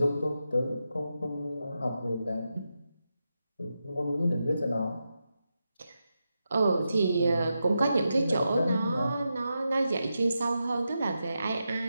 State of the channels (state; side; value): inverted; both; correlation -0.88